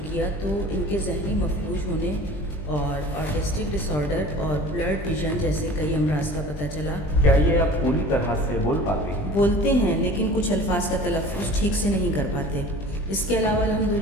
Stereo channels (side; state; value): right; late; 20 ms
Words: کیا تو ان کے ذہنی مفلوج ہونے اور آٹسٹک ڈس آرڈر اور بلرڈ ویژن جیسے کئی امراض کا پتہ چلا۔ کیا یہ اب پوری طرح سے بول پاتے ہیں؟ بولتے ہیں لیکن کچھ الفاظ کا تلفظ ٹھیک سے نہیں کر پاتے۔ اس کے علاوہ